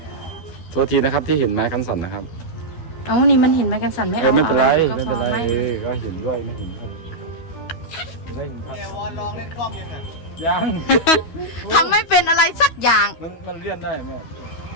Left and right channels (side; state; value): right; late; 12 ms